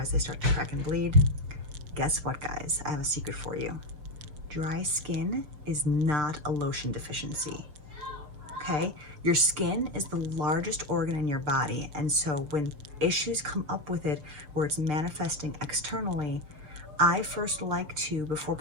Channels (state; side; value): late; left; 6.7 ms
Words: they start to crack and bleed? Guess what, guys? I have a secret for you. Dry skin is not a lotion deficiency, okay? Your skin is the largest organ in your body, and so when issues come up with it where it's manifesting externally, I first like to, before